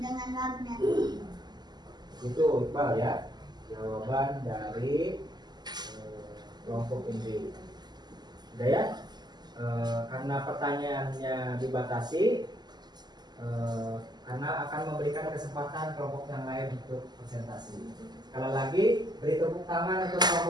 magnet. Itu Iqbal ya, jawaban dari kelompok ini. Udah ya, karena pertanyaannya dibatasi, karena akan memberikan kesempatan kelompok yang lain untuk presentasi. Sekali lagi, beri tepuk tangan untuk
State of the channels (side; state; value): left; late; 0.21 ms